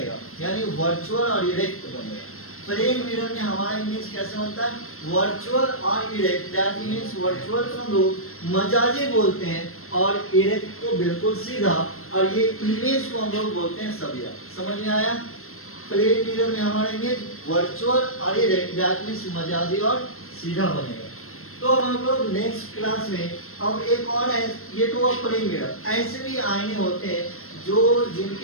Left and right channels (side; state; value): right; late; 0.62 ms